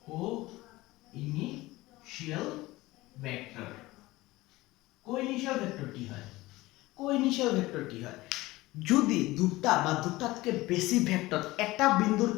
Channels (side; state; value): right; quieter; 19.2 dB